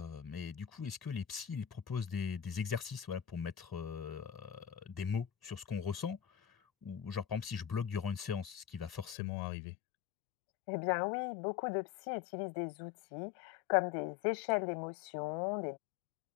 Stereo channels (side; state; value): right; drops out; at 9.2 s